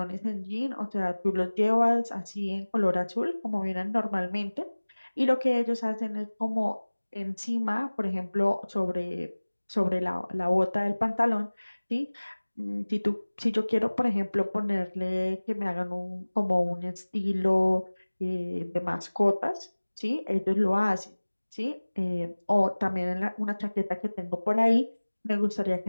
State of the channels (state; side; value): inverted; both; correlation -1.00